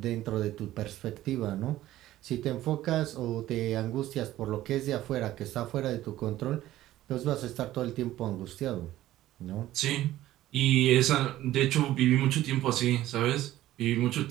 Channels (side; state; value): left; quieter; 14.6 dB